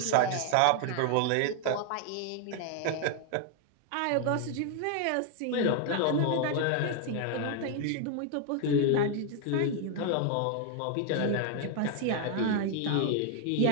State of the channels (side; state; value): both; different; correlation 0.00